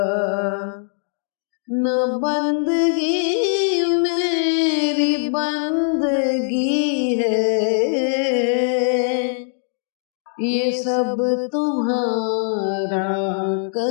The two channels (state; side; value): silent; right; digital silence